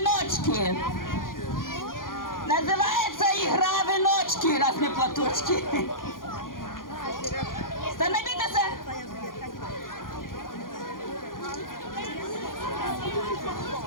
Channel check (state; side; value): late; right; 0.90 ms